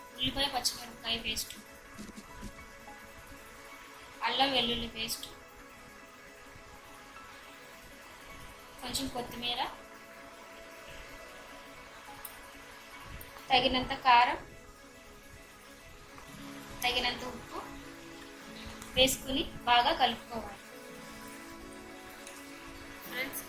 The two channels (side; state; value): both; identical; correlation 1.00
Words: ఉల్లిపాయ పచ్చిమిరపకాయ పేస్ట్, అల్లం వెల్లుల్లి పేస్ట్, కొంచెం కొత్తిమీర, తగినంత కారం, తగినంత ఉప్పు వేసుకుని బాగా కలుపుకోవాలి. ఫ్రెండ్స్,